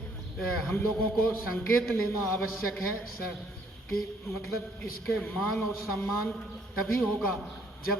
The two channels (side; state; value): both; normal; correlation 0.65